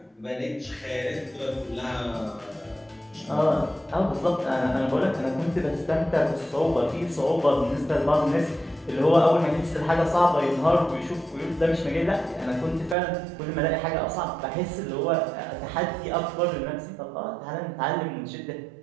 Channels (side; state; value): left; drops out; at 13.0 s